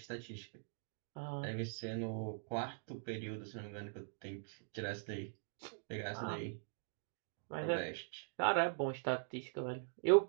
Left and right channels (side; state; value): left; silent; digital silence